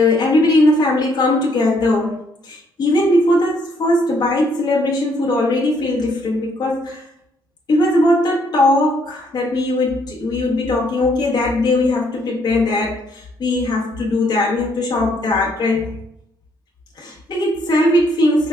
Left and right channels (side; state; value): both; normal; correlation 0.69